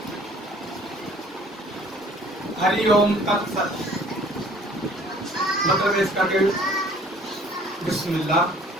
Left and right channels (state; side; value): normal; both; correlation 0.54